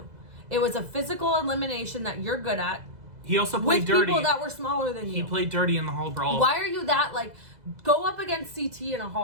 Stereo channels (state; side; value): late; left; 2.0 ms